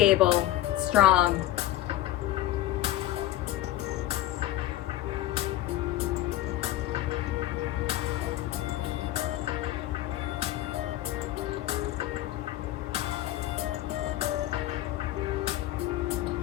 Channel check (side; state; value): right; quieter; 14.3 dB